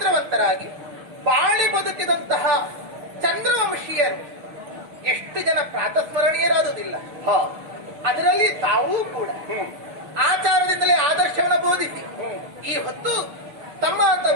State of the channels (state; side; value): late; left; 6.4 ms